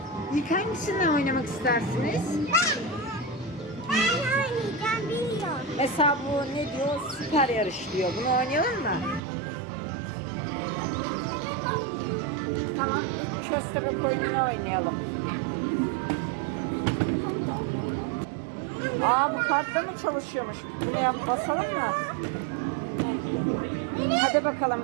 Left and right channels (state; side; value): drops out; left; at 9.2 s